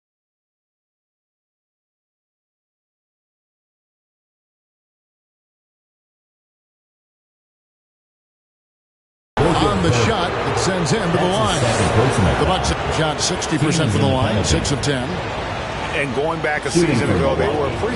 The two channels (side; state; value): both; identical; correlation 1.00